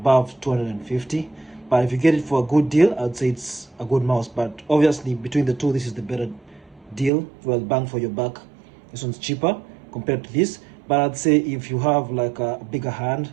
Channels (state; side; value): drops out; left; at 7.1 s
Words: 250, but if you get it for a good deal, I'd say it's a good mouse. But obviously, between the two, this is the better deal. Well, bang for your buck. This one's cheaper compared to this. But I'd say, if you have like a bigger hand